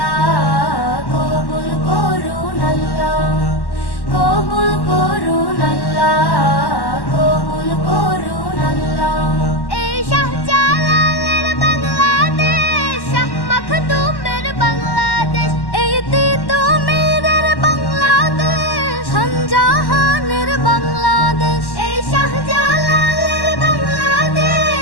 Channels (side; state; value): right; late; 1.1 ms